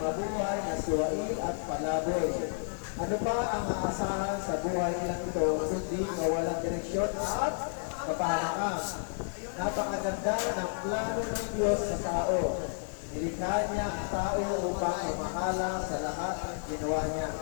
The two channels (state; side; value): silent; right; digital silence